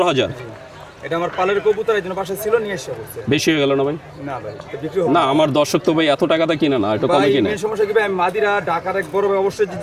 এটা আমার পালের কবুতর, এই জন্য বাসায় ছিল, নিয়ে এসে বলছে। বেশি হয়ে গেল না ভাই? না ভাই, এটা বিক্রি হবে না, আমার দর্শক তো ভাই এত টাকাতে কিনে না, একটু কমে ভাই। কিনে। মেন সমস্যা কি ভাই, আমি মাদিরা ঢাকার এক বড় ভাই, অবশ্যই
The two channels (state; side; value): identical; both; correlation 1.00